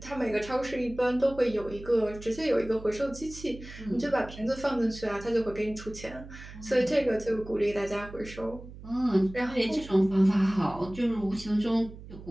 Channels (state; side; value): noise; right; hum, 15 dB below the sound